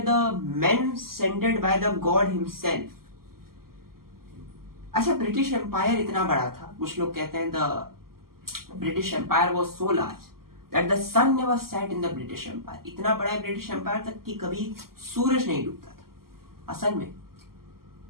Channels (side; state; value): left; late; 0.92 ms